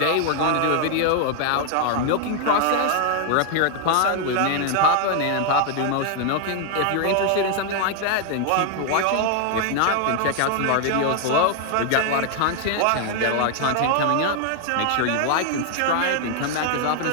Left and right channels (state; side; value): different; both; correlation 0.00